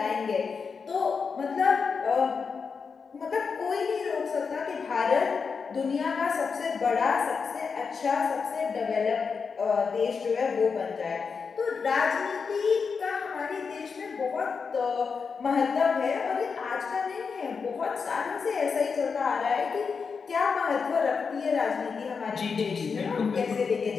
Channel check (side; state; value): right; quieter; 5.5 dB